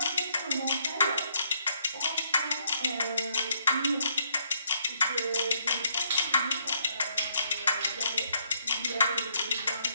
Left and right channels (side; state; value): both; inverted; correlation -0.71